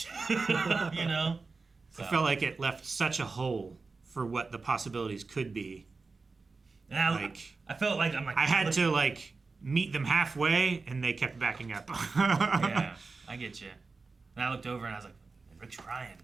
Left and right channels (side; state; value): left; quieter; 4.1 dB